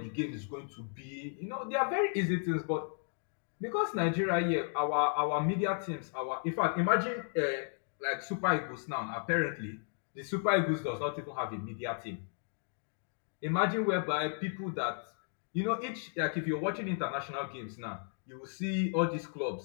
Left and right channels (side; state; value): right; silent; 55 dB below the other